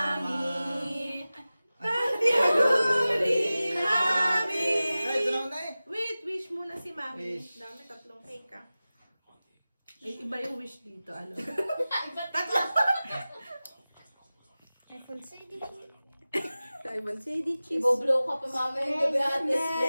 Tantiaguri mami. Nay, tunaw na eh. Wait, wish muna si mami. Wish. Dami tatlong cake ah. Iba yung wish dito, ano? iPhone CD cheese. Iboblow ka pa mamaya yung gabiatis.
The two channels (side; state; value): both; inverted; correlation -0.96